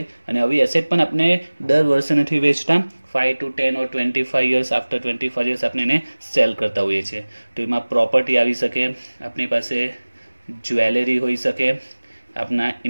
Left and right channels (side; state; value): both; inverted; correlation -1.00